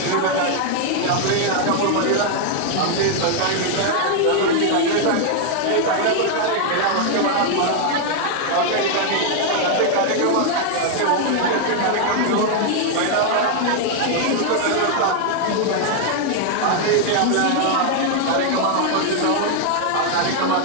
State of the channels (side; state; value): both; different; correlation 0.00